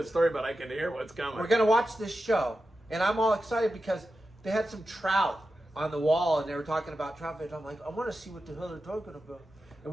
story, but I can hear what's coming. We're gonna watch this show, and I'm all excited because they had some trout on the wall, and they were talking about trout fish. I'm like, I want to see what the hell they're talking about. And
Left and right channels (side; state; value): both; normal; correlation 0.91